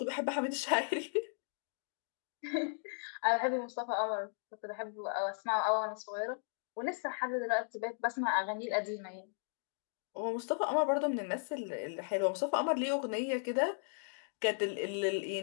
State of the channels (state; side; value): silent; right; digital silence